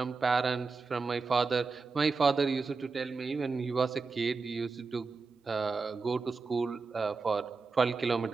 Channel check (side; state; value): left; quieter; 4.4 dB